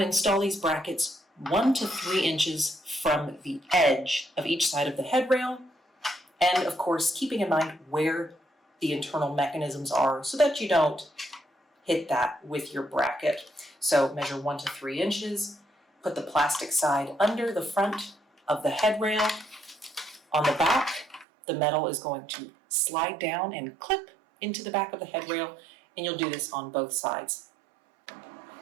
install these brackets 1 to 3 inches from the edge of each side of the headrail, and of course keeping in mind where the internal mechanisms are so that you don't hit that with your bracket. So measure 1 to 3 inches, put the plastic side under the front of the headrail. On the back, the metal is going to slide down and clip into the back of the headrail, and you'll do this on both sides.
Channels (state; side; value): drops out; left; at 21.2 s